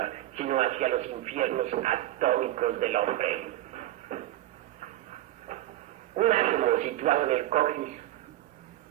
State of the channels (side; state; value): left; quieter; 14.6 dB